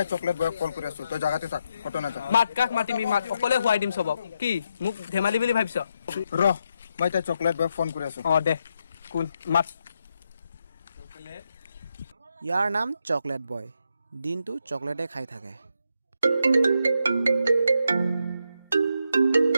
চকলেট বয়ক কল কৰি আছো তই জাগাতে থাক ফটো নাযা মাত কাক মাতিমি মাত অকলে হুৱাই দিম সবক কি মোক ধেমালি বুলি ভাবিছ ৰ মই এতিয়া চকলেট বয়ক ফোন কৰি আছো দে কোন মাত ইয়াৰ নাম চকলেট বয় দিনটো চকলেটে খাই থাকে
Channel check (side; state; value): both; inverted; correlation -0.81